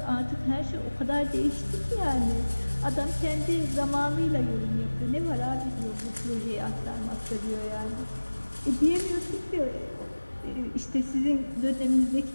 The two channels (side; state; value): both; inverted; correlation -1.00